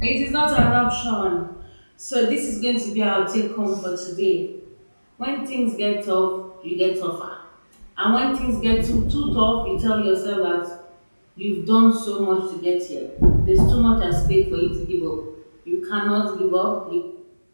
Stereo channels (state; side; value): inverted; both; correlation -1.00